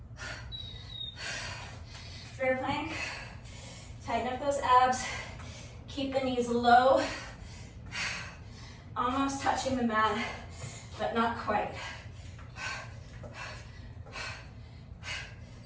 Bear plank. Tighten up those abs. Keep the knees low. Almost touching the mat, but not quite.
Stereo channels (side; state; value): both; identical; correlation 1.00